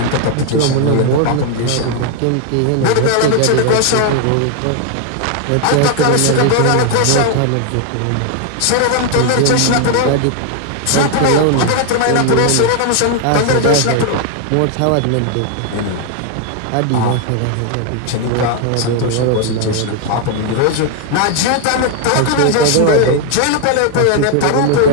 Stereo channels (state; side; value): different; both; correlation 0.00